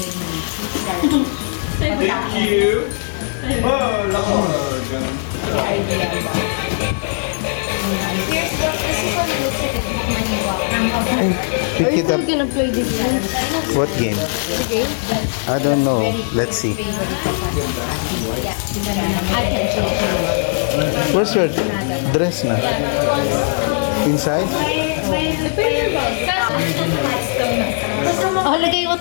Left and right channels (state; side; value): silent; right; digital silence